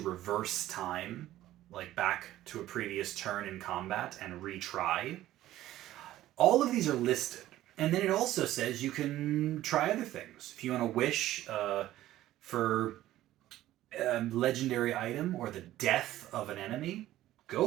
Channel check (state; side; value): quieter; left; 14.4 dB